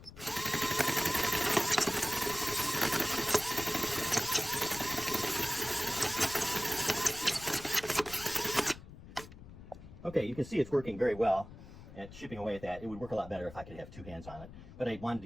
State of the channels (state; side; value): noise; left; rumble, 16 dB below the sound